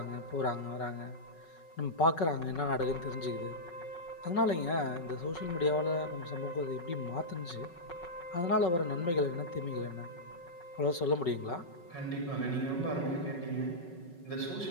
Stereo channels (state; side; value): late; right; 5.4 ms